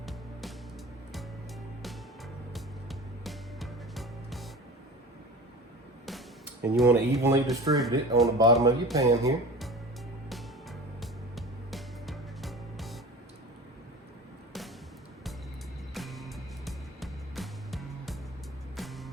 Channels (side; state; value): both; normal; correlation 0.36